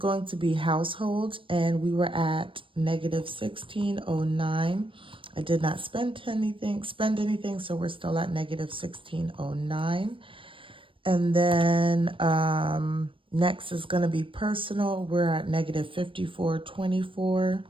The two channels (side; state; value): left; late; 0.25 ms